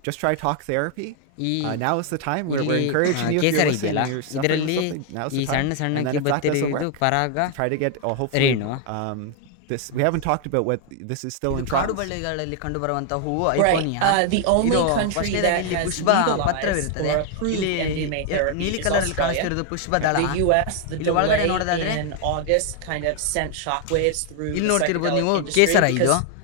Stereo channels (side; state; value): both; different; correlation 0.00